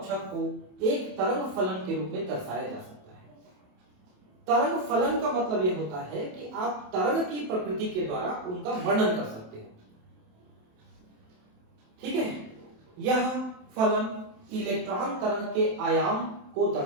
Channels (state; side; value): late; left; 27 ms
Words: को एक तरंग फलन के रूप में दर्शाया जा सकता है। तरंग फलन का मतलब यह होता है कि आप तरंग की प्रकृति के द्वारा उनका वर्णन कर सकते हो। ठीक है, यह फलन इलेक्ट्रॉन तरंग के आयाम को